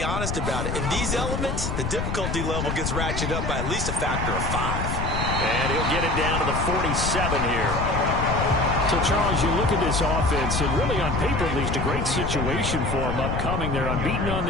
honest about it. In these elements, the difficulty level gets ratcheted up by at least a factor of 5. And he'll get it down to the 47 here. So, Charles, you look at this offense, and really on paper, at least a great situation for them upcoming. They're unbeaten on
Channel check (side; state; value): left; noise; rumble, 2 dB below the sound